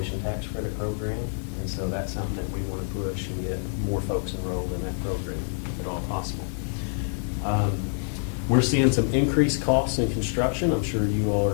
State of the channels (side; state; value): right; silent; 61 dB below the other